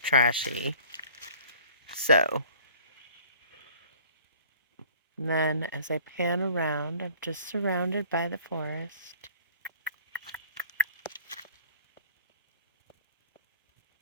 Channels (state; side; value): inverted; both; correlation -0.50